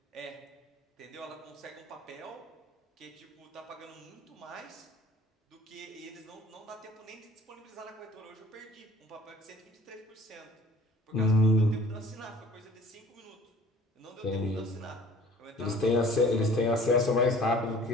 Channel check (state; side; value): normal; both; correlation 0.50